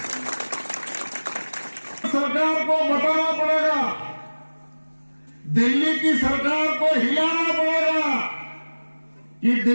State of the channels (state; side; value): inverted; both; correlation -1.00